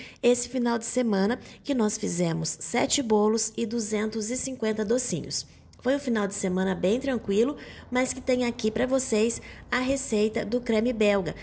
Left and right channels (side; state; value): both; identical; correlation 1.00